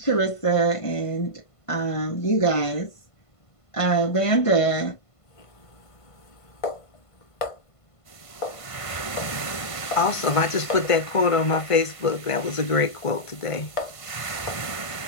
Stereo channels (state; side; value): late; right; 1.5 ms